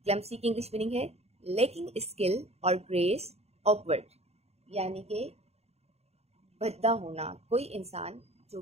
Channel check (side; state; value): left; late; 0.30 ms